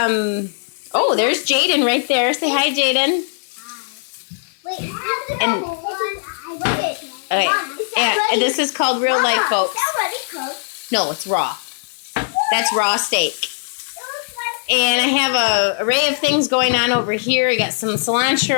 oh, there's Jaden right there. Say hi, Jaden. Wait, And, okay, and this is called Real Life, folks. No, it's raw. That's raw steak. And I have a array of things going on over here. I got some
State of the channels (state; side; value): silent; right; digital silence